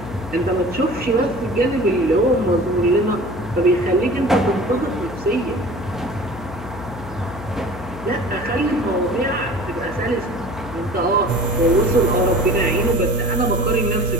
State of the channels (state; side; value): noise; left; hum, 13 dB below the sound